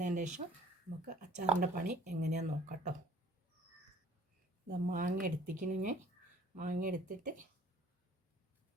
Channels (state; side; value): normal; both; correlation 0.55